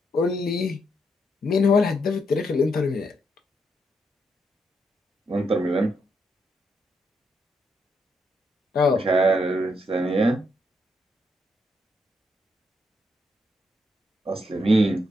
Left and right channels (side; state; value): both; normal; correlation 0.78